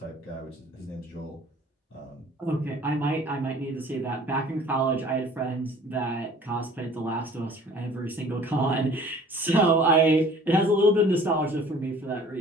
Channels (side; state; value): both; normal; correlation 0.50